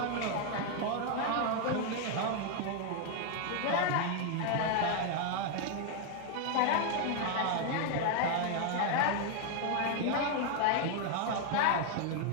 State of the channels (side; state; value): both; different; correlation 0.00